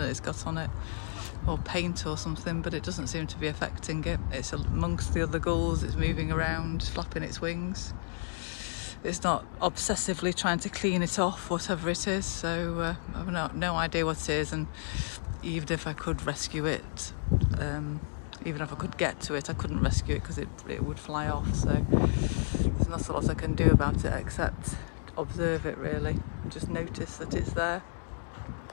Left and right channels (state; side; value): silent; right; digital silence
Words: it's got on it, or paint or something, but it doesn't seem to be affecting it. It's amongst the other gulls, it's moving around, flapping its wings. It's not obsessively trying to clean it off, whatever it is, so I've no idea what it is, and even if I could rescue it, even if I could get to it, I couldn't rescue it because it would fly off, so there's not a lot I can do about it except observe it really, and just notice that it's there.